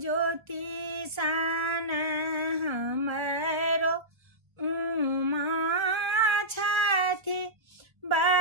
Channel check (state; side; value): late; left; 1.3 ms